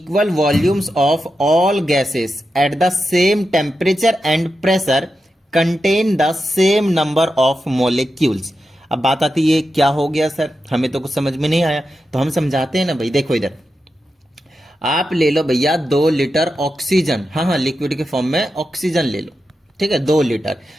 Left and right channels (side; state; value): both; normal; correlation 0.89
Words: volumes of all gases at the same temperature and pressure contain the same number of molecules. अब बात आती है, क्या हो गया सर, हमें तो कुछ समझ में नहीं आया। तो हम समझाते हैं ना भाई। देखो इधर, आप ले लो भैया 2 लीटर ऑक्सीजन, हाँ, लिक्विड के फॉर्म में ऑक्सीजन ले लो। ठीक है, 2 लीटर।